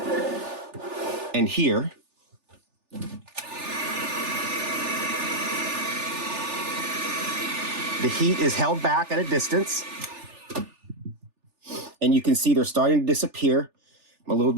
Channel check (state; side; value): late; left; 3.4 ms